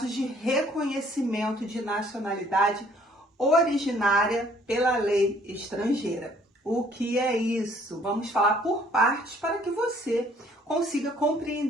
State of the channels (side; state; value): both; normal; correlation 0.60